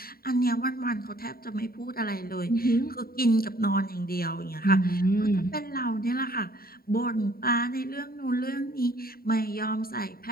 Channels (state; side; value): late; right; 0.43 ms